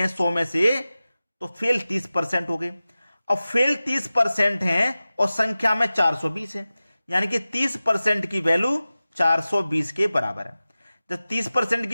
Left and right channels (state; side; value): inverted; both; correlation -0.96